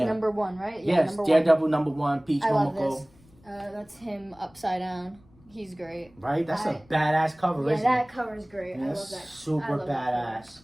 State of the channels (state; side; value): noise; left; rumble, 28 dB below the sound